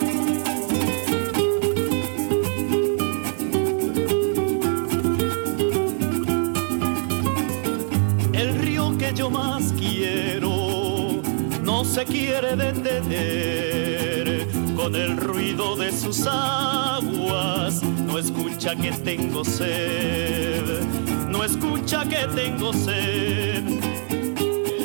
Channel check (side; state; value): left; silent; digital silence